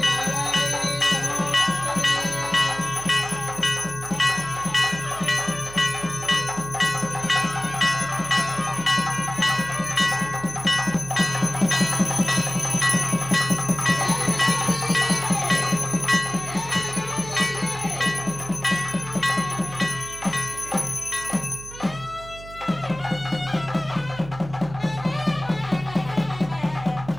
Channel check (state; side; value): noise; right; hum, 15 dB below the sound